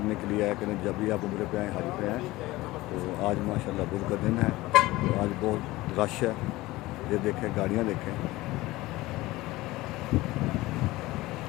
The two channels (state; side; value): quieter; right; 18.9 dB